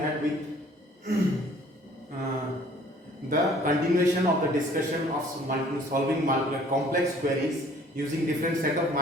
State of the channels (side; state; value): both; normal; correlation 0.55